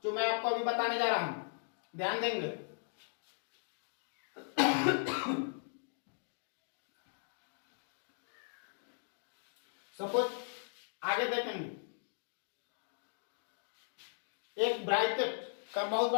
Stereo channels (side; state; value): right; silent; digital silence